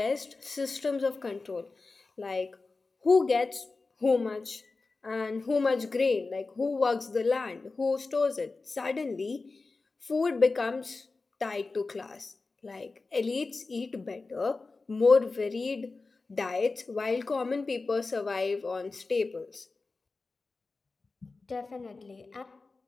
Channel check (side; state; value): right; quieter; 3.8 dB